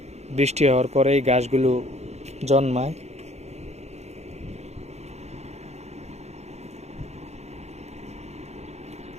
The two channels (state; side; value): late; left; 0.32 ms